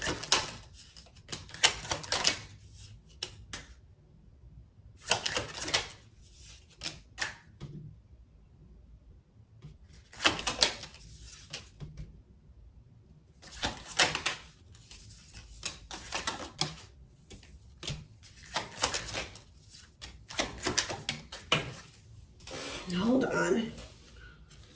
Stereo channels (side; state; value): both; identical; correlation 1.00